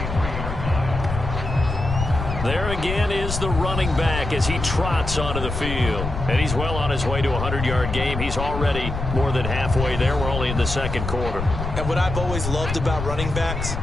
There again is the running back as he trots onto the field. And he's well on his way to a 100-yard game. He's already more than halfway there. We're only in the second quarter. And what I've always loved about running backs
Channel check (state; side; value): noise; left; rumble, 5 dB below the sound